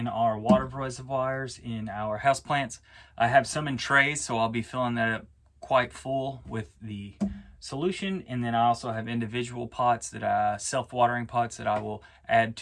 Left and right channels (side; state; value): both; identical; correlation 1.00